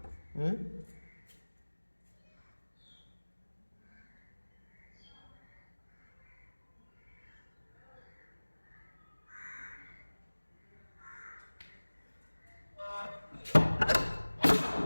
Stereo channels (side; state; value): both; inverted; correlation -1.00